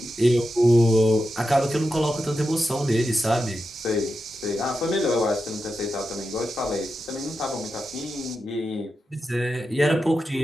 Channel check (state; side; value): normal; both; correlation 0.89